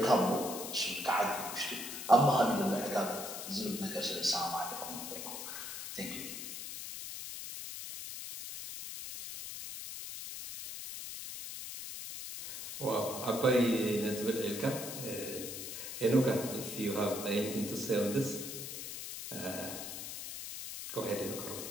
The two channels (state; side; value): noise; left; hiss, 8 dB below the sound